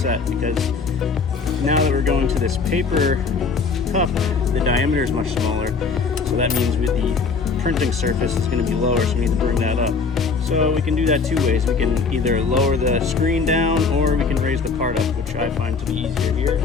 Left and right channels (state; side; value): quieter; right; 4.9 dB